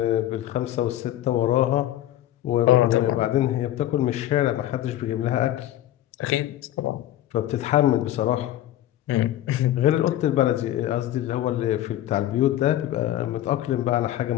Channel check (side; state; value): right; quieter; 13.2 dB